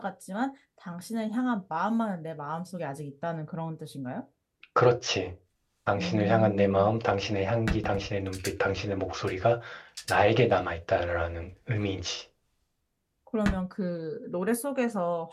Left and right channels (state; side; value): identical; both; correlation 1.00